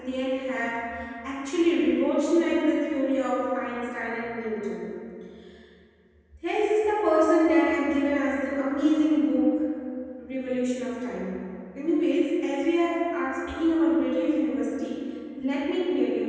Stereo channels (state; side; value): identical; both; correlation 1.00